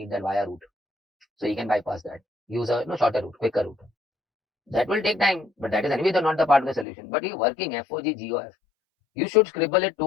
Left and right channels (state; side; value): drops out; right; at 6.9 s